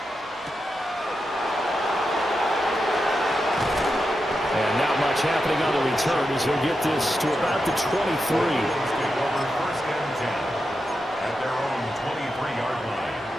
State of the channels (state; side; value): normal; both; correlation 0.88